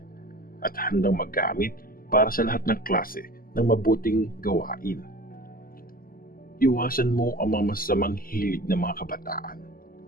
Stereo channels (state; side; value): late; right; 0.42 ms